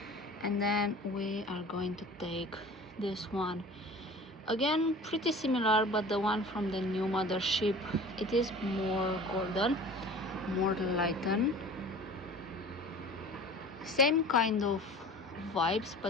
and then we are going to take this one. Again, pretty similar, but the one from the new Mothership, it is more golden, more lightened, same kind of vibes,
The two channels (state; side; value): normal; both; correlation 0.42